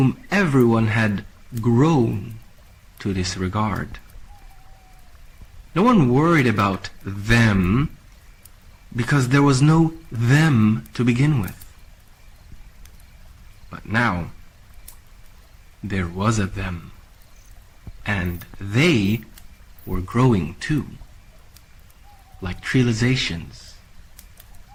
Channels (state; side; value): identical; both; correlation 1.00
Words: everyone had grown to disregard. No one worried about them because there was no them to begin with. But now, there was a them, and they were growing too, like trializations,